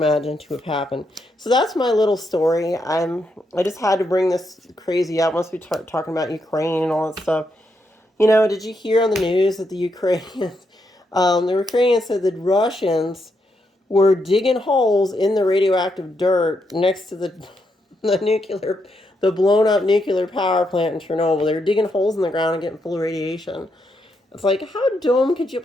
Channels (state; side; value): normal; both; correlation 0.80